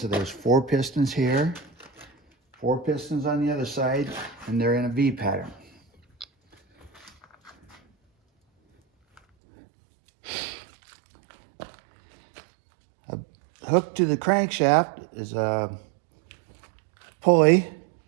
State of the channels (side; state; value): left; drops out; at 9.2 s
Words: there's 4 pistons here, 4 pistons on the other side, and they're in a V pattern. Hooked to the crankshaft is a pulley